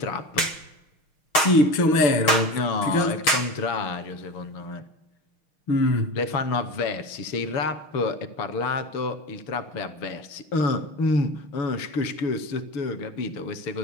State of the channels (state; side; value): late; right; 6.4 ms